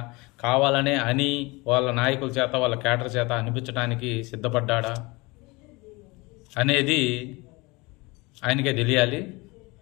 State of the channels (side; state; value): right; quieter; 24.8 dB